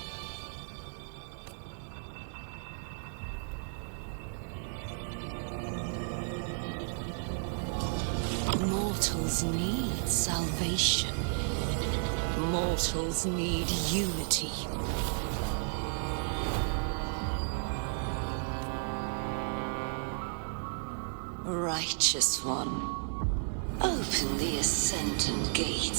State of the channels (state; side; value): silent; left; digital silence